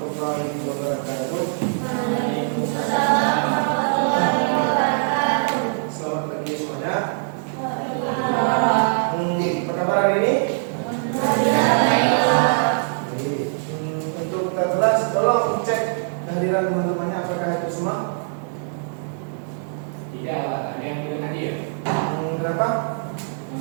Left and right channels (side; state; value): left; silent; digital silence